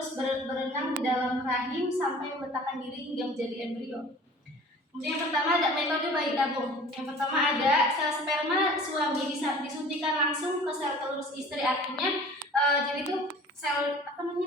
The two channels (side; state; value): both; normal; correlation 0.45